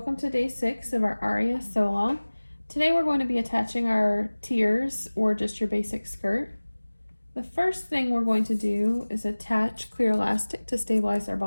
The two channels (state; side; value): inverted; both; correlation -1.00